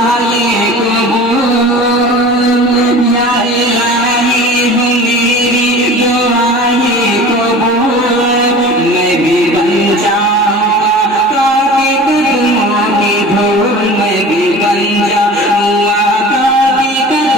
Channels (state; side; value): normal; both; correlation 0.39